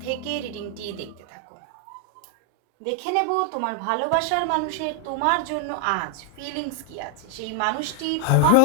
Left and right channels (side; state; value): both; different; correlation 0.00